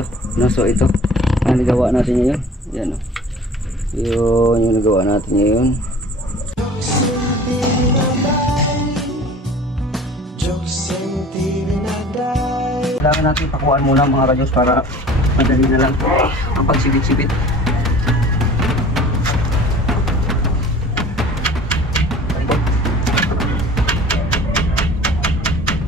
No, so ito ang nagawa natin ngayon. Yan o. Yun yung nagawa natin ngayon. Kailangan natin pakuhaan muna mga radyos para madali na lang ang pagsibit-sibit.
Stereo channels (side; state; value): both; normal; correlation 0.45